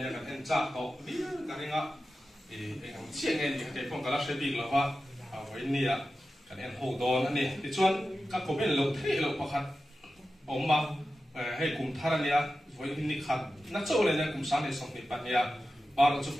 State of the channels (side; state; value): both; normal; correlation 0.93